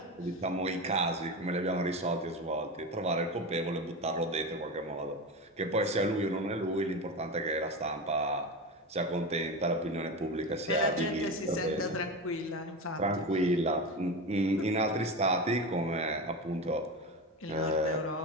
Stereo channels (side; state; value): both; normal; correlation 0.22